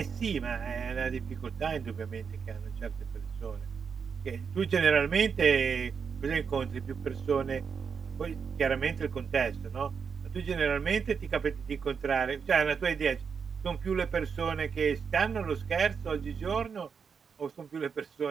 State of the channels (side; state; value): left; quieter; 6.2 dB